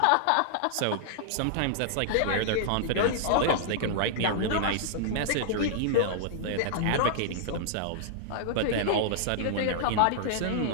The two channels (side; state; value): both; different; correlation -0.01